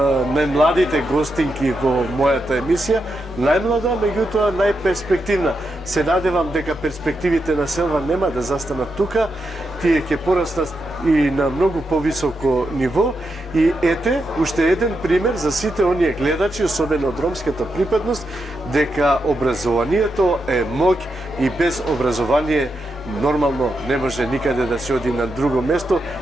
најмладите гостинки во мојата емисија. Најмлада, меѓутоа најперспективна. Се надевам дека перспективите на Селва нема да застанат тука, тие ќе пораснат и на многу повисоко ниво. И ете, уште еден пример за сите оние гледачи, особено од ромската припадност, дека образованието е моќ и без образование нормално не може никаде да се оди на друго место,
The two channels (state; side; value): normal; both; correlation 0.85